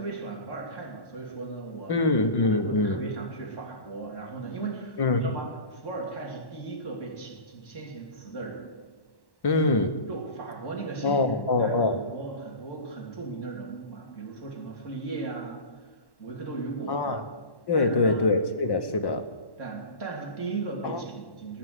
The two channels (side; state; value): right; late; 1.1 ms